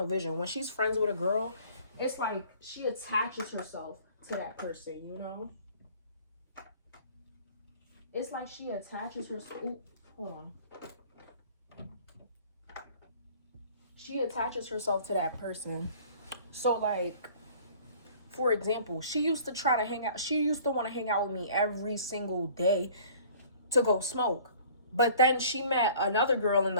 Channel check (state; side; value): inverted; both; correlation -0.51